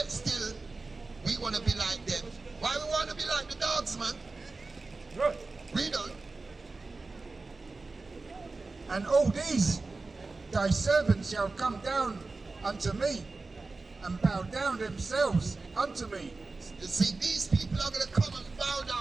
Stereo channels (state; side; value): quieter; left; 3.7 dB